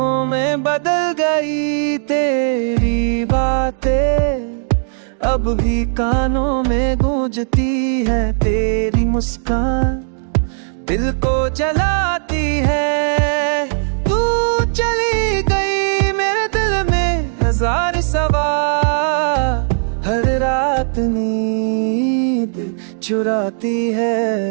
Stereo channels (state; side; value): silent; left; digital silence